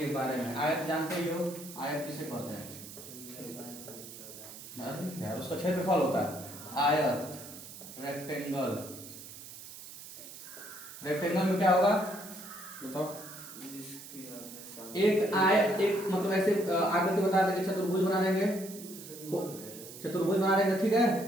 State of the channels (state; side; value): noise; right; hiss, 14 dB below the sound